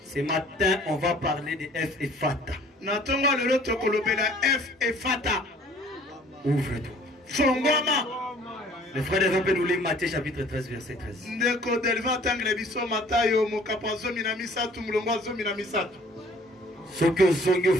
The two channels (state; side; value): normal; both; correlation 0.54